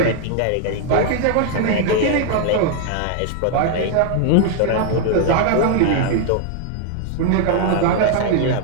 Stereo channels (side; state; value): both; different; correlation 0.00